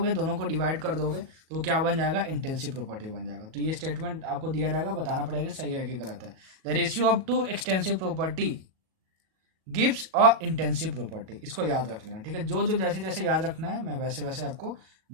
दोनों को डिवाइड कर दोगे, तो वो क्या बन जाएगा? इंटेंसिव प्रॉपर्टी बन जाएगा। तो ये स्टेटमेंट आपको दिया जाएगा, बताना पड़ेगा सही है कि गलत है। The ratio of two extensive property gives a intensive property, इसको याद रख लेना, ठीक है। जो जो जैसे जैसे याद रखना है मैं वैसे वैसे आपको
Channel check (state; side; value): late; left; 37 ms